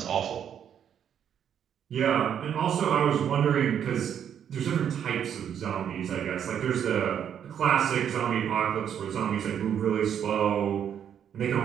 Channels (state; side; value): quieter; left; 8.9 dB